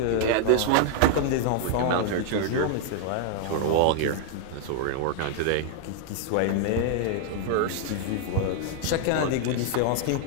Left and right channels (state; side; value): different; both; correlation 0.00